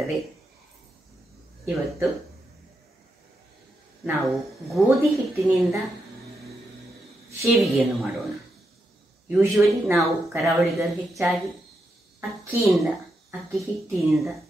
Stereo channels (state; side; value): normal; both; correlation 0.84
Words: ಇವತ್ತು ನಾವು ಗೋಧಿ ಹಿಟ್ಟಿನಿಂದ ಶೇವಿಗೆಯನ್ನು ಮಾಡೋಣ. ಯೂಶುವಲಿ ನಾವು ಕರಾವಳಿಗರು ಹೆಚ್ಚಾಗಿ ಅಕ್ಕಿ ಹಿಟ್ಟಿನಿಂದ